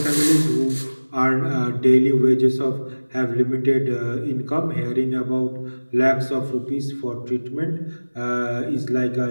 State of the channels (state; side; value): inverted; both; correlation -1.00